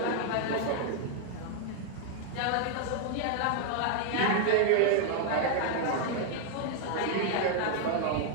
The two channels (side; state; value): both; different; correlation 0.00